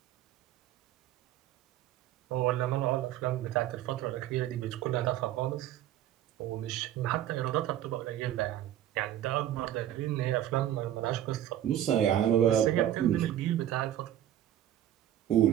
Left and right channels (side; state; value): left; quieter; 11.9 dB